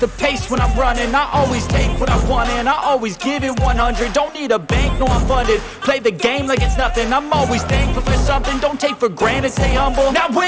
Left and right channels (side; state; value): both; identical; correlation 1.00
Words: the pace when I'm running. I always take what I want and I always give it 100. Don't need a bank, no I'm funded. Play the game like it's nothing. I'm always thankful for something. Don't take for granted, stay humble. Now